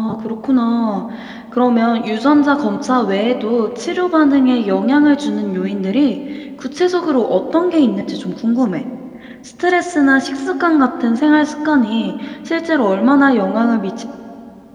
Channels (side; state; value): both; identical; correlation 1.00